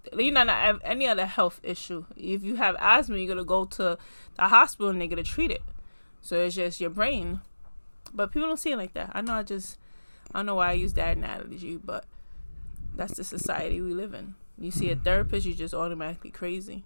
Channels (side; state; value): both; inverted; correlation -1.00